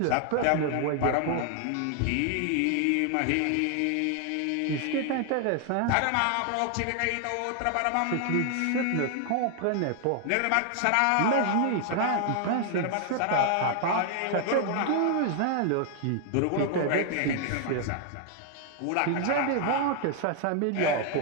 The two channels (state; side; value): different; both; correlation 0.00